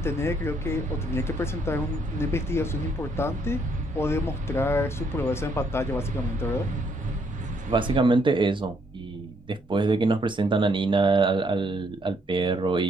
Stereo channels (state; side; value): normal; both; correlation 0.71